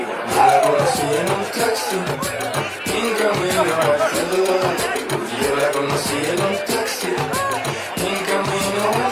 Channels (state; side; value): identical; both; correlation 1.00